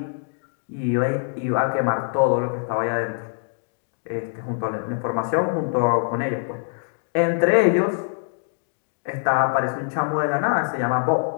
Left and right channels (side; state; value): right; silent; digital silence